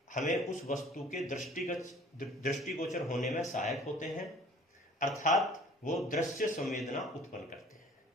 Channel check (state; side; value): normal; both; correlation 0.51